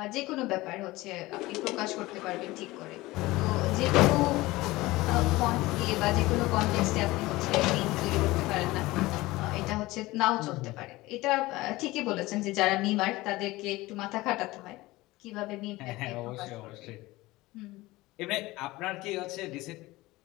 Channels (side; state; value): right; quieter; 19.6 dB